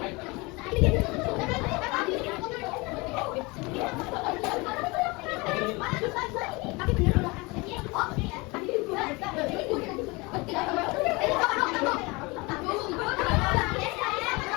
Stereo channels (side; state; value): right; quieter; 25.4 dB